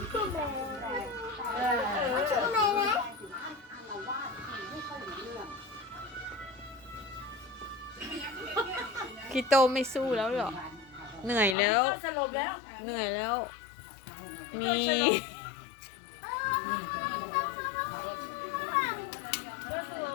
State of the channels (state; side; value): drops out; right; at 11.6 s